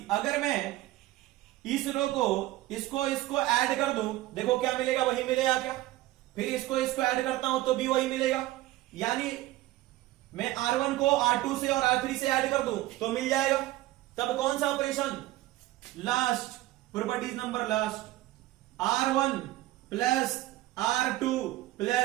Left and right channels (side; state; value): left; quieter; 16.7 dB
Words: अगर मैं इस रो को इसको ऐड कर दूं, देखो क्या मिलेगा, वही मिलेगा क्या, फिर इसको ऐड करता हूं तो भी वही मिलेगा, यानी मैं R1 को R2 से और R3 से ऐड कर दूं तो मिल जाएगा। तब कौन सा operation, last, properties number last, R1 plus R2